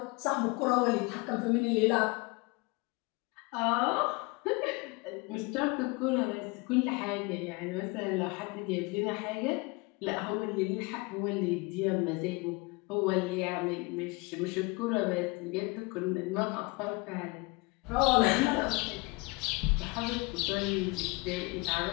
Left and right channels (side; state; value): right; quieter; 26.6 dB